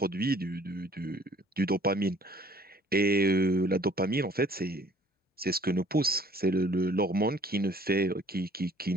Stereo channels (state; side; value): normal; both; correlation 0.56